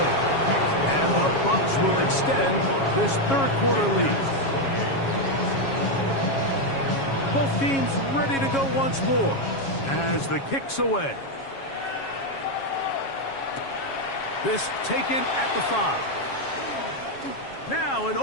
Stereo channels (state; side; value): late; right; 7.3 ms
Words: And the Bucs will extend this third quarter lead. Both teams ready to go once more as the kick's away. This taken at the 5. Now an